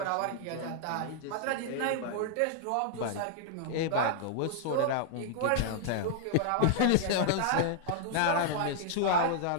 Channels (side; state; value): both; different; correlation -0.01